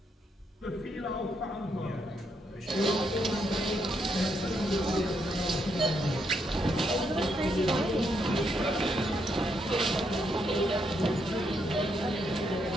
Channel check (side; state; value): both; normal; correlation 0.77